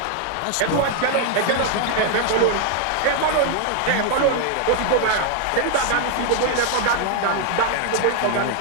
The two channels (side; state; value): both; different; correlation 0.00